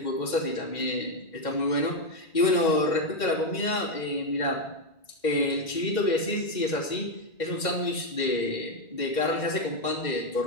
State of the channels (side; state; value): right; late; 2.1 ms